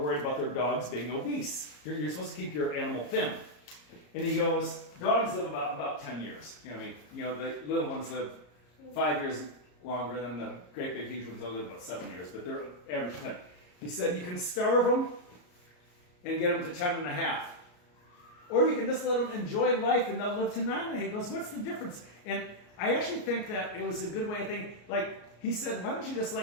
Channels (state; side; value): late; right; 34 ms